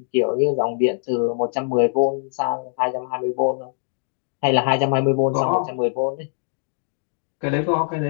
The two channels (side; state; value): right; silent; digital silence